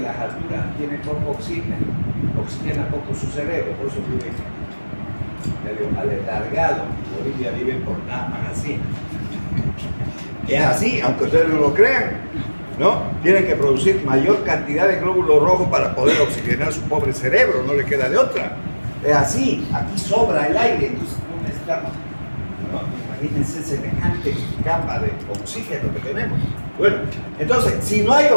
las alturas tiene poco oxígeno, oxigena poco su cerebro, por eso vive medio aletargado. En Bolivia viven por nada más así. Es así, aunque ustedes no lo crean, ¿no? Tienen que producir mayor cantidad de glóbulos rojos para poder oxigenar su pobre cerebro, no le queda de otra. Es así, aquí sobra el aire, entonces no necesitamos, ¿no? Imagínense semejante capa de oxígeno que tenemos. Bueno, entonces, si no hay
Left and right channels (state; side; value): inverted; both; correlation -1.00